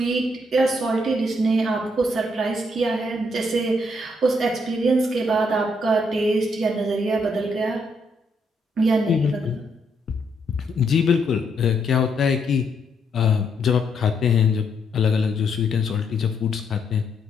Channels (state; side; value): normal; both; correlation 0.74